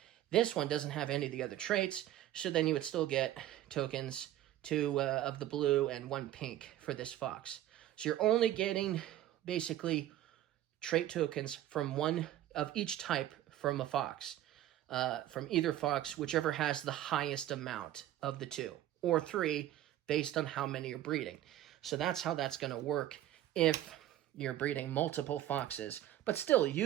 This one doesn't have any of the other traits, so then you would still get tokens 2 of the blue and 1 pink for this fox. So you're only getting basically trait tokens from 1 of each type from a fox, from either fox, whichever has the highest amount of the 2, or 3, based on how many you're breeding. So that's how that's going to work if you're breeding multiple foxes. But still,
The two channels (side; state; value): left; quieter; 13.2 dB